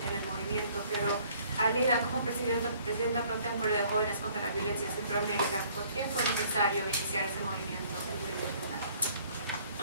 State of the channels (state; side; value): inverted; both; correlation -0.59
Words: el movimiento, pero a Leida, como presidenta pro tempore de Jóvenes contra la Violencia en Centroamérica, ¿por qué fue necesario iniciar ese movimiento en nivel regional?